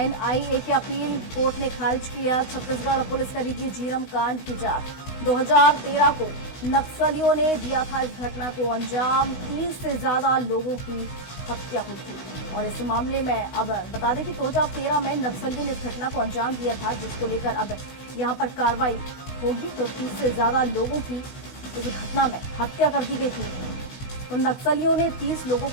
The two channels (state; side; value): late; right; 16 ms